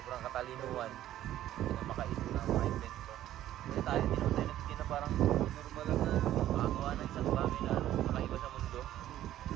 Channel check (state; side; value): quieter; left; 12.9 dB